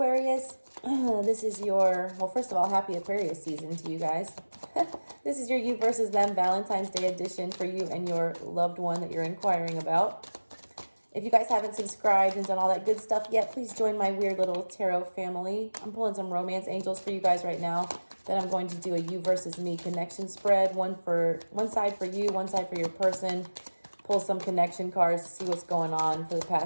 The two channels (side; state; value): both; inverted; correlation -1.00